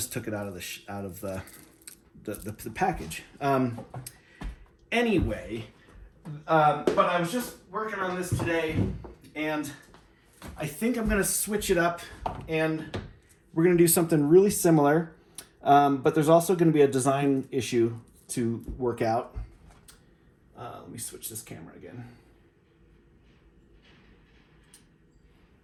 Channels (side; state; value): both; identical; correlation 1.00